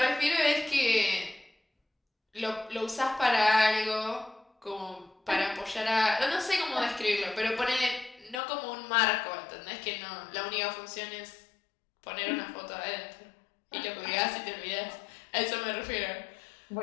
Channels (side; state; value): right; drops out; at 8.4 s